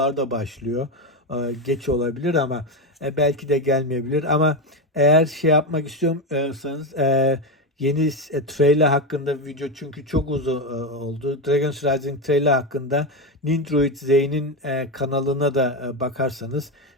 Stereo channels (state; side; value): normal; both; correlation 0.13